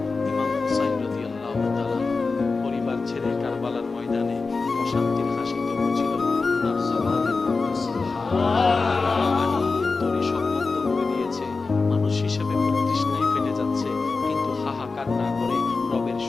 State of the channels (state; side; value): quieter; right; 4.1 dB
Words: ইমাম হুসাইন রাদিয়াল্লাহু তাআলা পরিবার ছেড়ে কারবালার ময়দানে প্রশান্তির হাসি তো ছিল ওনার জবানে সুবহানাল্লাহ তরি সব বন্ধ করে দিয়েছে মানুষ হিসেবে প্রতিষ্ঠায় ফেটে যাচ্ছে হাহাকার না করে রবের